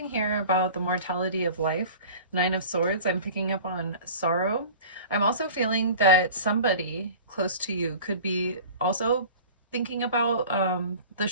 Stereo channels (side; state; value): both; inverted; correlation -0.40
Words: here about the mortality of life. Nine of Swords, I'm picking up on sorrow. I'm also feeling that somebody close to you could be also thinking about the